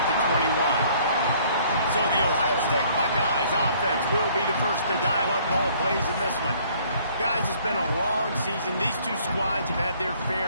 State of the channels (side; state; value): both; inverted; correlation -0.59